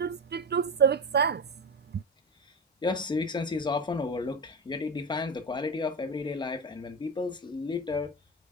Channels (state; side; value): normal; both; correlation 0.20